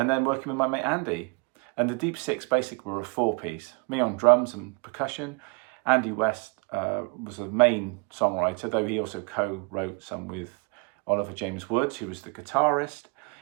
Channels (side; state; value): left; quieter; 31.8 dB